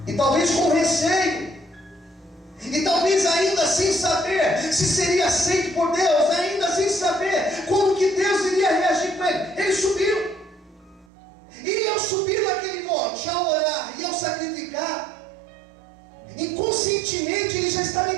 E talvez com receio, e talvez ainda sem saber se seria aceito por Deus, ainda sem saber como que Deus iria reagir com ele. Ele subiu. E ao subir naquele monte, ao orar e ao sacrificar, inconscientemente ele já estava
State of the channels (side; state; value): left; drops out; at 11.1 s